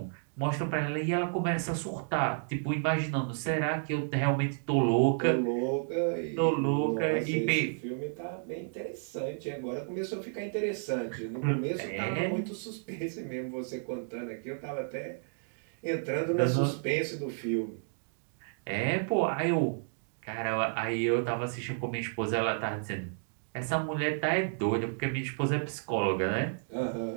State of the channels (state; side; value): silent; left; digital silence